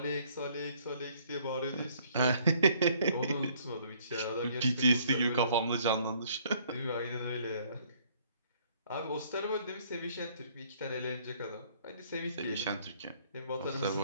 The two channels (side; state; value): both; inverted; correlation -0.62